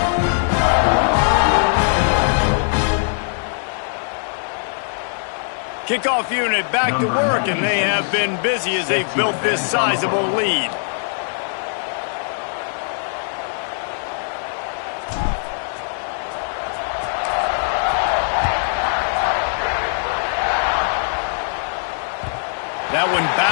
Kickoff unit back to work, and they have been busy as they've built this sizable lead. That one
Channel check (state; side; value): silent; right; digital silence